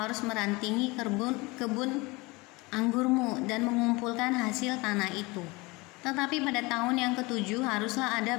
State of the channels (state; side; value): quieter; right; 24.2 dB